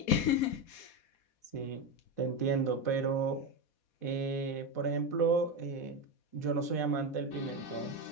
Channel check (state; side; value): late; right; 4.0 ms